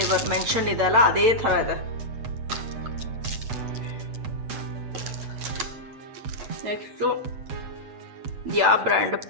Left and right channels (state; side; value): late; left; 8.1 ms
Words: mention ಇದೆಲ್ಲ ಅದೇ ಥರ ಇದೆ. ನೆಕ್ಸ್ಟು ಯಾವ ಬ್ರ್ಯಾಂಡ್?